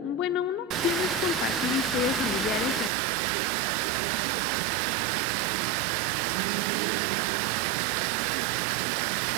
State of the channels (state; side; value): drops out; left; at 2.9 s